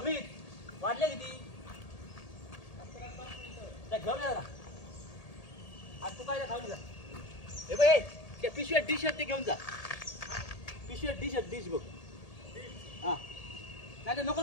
वाटले किती घेऊन या. आज तू काय खाऊ जा. हे बघ, त्या पिशव्या डिश ते घेऊन जा. पिशव्या डिश बघ. हा नाही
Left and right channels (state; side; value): late; right; 1.8 ms